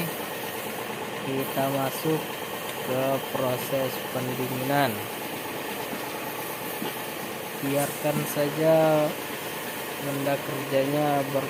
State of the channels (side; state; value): both; identical; correlation 1.00